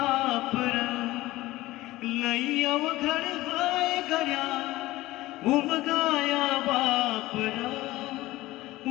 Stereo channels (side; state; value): right; quieter; 17.8 dB